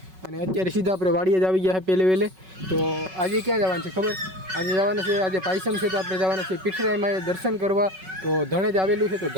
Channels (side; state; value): left; late; 5.4 ms